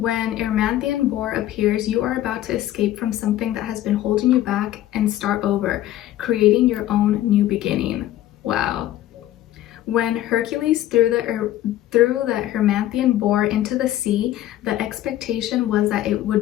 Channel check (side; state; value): right; quieter; 13.6 dB